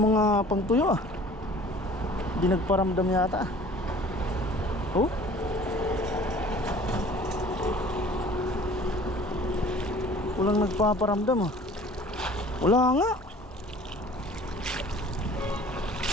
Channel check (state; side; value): normal; both; correlation 0.48